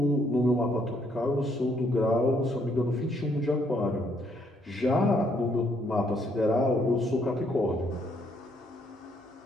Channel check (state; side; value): normal; both; correlation 0.70